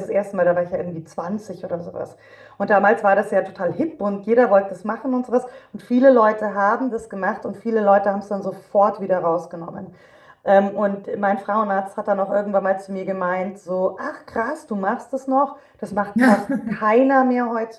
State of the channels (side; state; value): both; identical; correlation 1.00